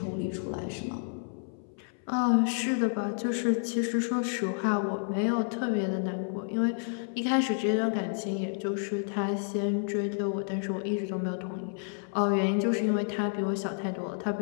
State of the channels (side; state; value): right; silent; 58 dB below the other